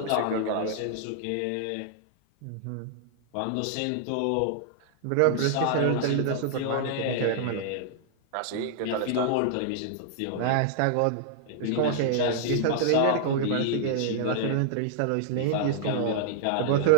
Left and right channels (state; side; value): different; both; correlation -0.01